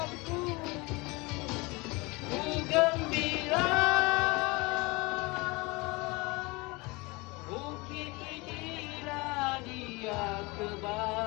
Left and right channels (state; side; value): quieter; right; 25.1 dB